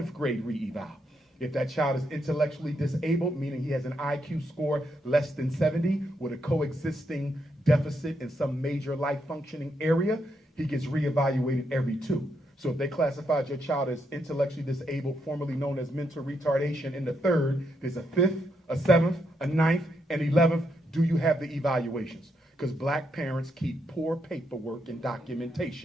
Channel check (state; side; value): normal; both; correlation 0.79